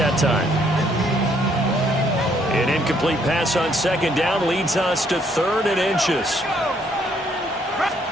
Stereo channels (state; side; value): normal; both; correlation 0.68